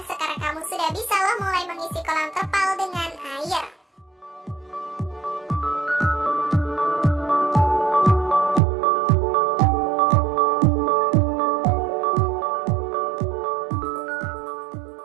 mulai mengisi kolam terpal dengan air.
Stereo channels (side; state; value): left; drops out; at 8.6 s